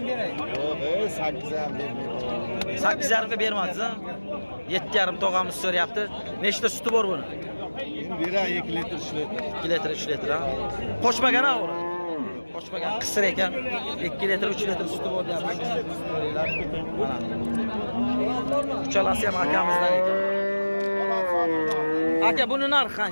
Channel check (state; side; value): inverted; both; correlation -1.00